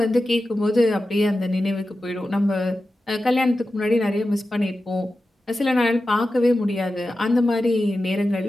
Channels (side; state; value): both; normal; correlation 0.93